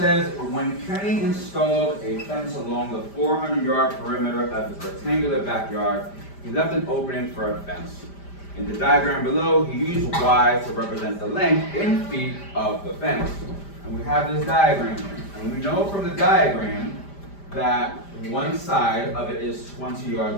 when Kenny installed a fence along the 400-yard perimeter of his rectangular backyard, he left an opening for a fence. In the diagram below, he used Y to represent the length in feet of the fence. And we have this diagram here. And we know from the diagram that one side of it is 20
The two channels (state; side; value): late; right; 5.0 ms